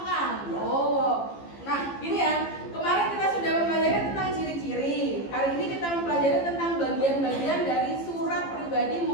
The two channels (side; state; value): right; late; 15 ms